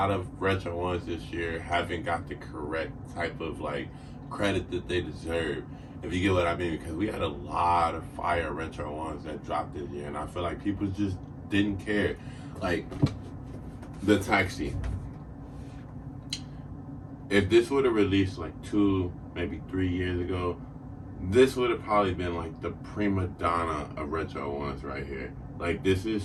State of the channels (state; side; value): identical; both; correlation 1.00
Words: of retro ones this year haven't got the correct type of, credit that they deserve. If you get what I mean, because we had a lot of fire retro ones that dropped this year, and I feel like people just didn't care. Like the taxi. If this would have released like 2, maybe 3 years ago, this would have probably been like the prima donna of retro ones right here. Like this is